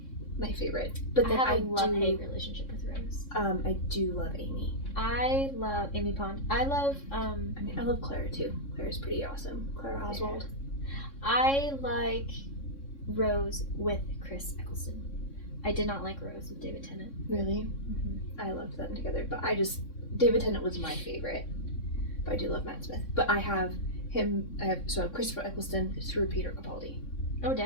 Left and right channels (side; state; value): right; late; 3.6 ms